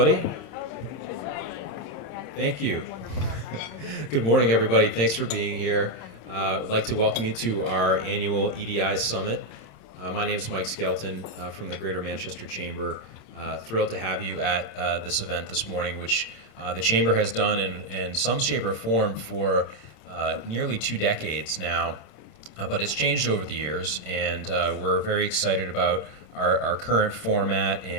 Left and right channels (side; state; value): right; late; 26 ms